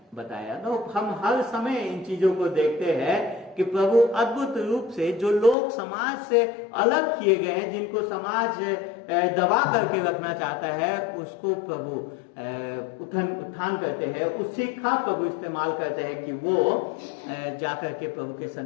बताया। तो हम हर समय इन चीजों को देखते हैं कि प्रभु अद्भुत रूप से जो लोग समाज से अलग किए गए हैं, जिनको समाज दबा करके रखना चाहता है, उसको प्रभु उत्थान करते हैं, उसी का प्रभु इस्तेमाल करते हैं कि वो जाकर के प्रभु के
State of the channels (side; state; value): right; drops out; at 5.6 s